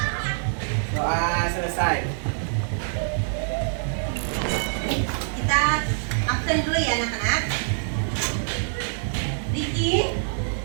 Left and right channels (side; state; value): left; silent; digital silence